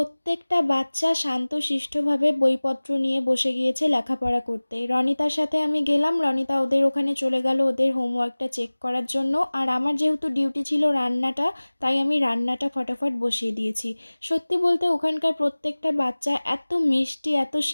বাচ্চা শান্তশিষ্টভাবে বইপত্র নিয়ে বসে গিয়েছে লেখাপড়া করতে। রনিতার সাথে আমি গেলাম, রনিতা ওদের ওখানে চলে গেল ওদের হোমওয়ার্কটা চেক করার জন্য, আর আমার যেহেতু ডিউটি ছিল রান্নাটা, তাই আমি রান্নাটা ফটাফট বসিয়ে দিয়েছি। সত্যি বলতে ওখানকার প্রত্যেকটা বাচ্চা এত মিষ্টি, এত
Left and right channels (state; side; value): inverted; both; correlation -1.00